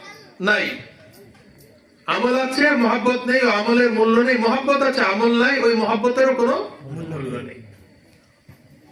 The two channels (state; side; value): identical; both; correlation 1.00